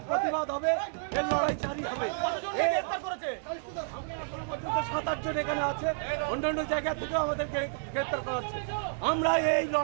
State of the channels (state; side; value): silent; left; digital silence